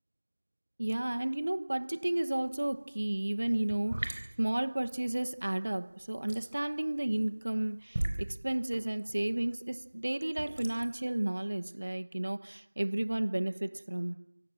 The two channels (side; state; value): both; inverted; correlation -1.00